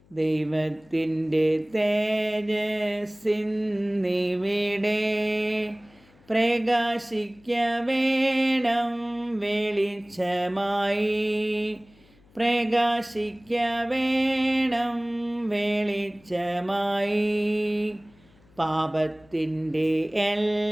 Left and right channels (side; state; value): left; noise; hum, 29 dB below the sound